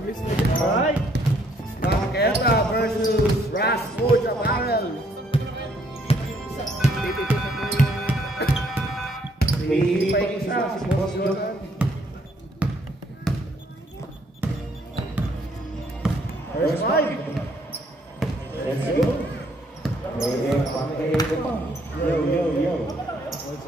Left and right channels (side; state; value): both; normal; correlation 0.67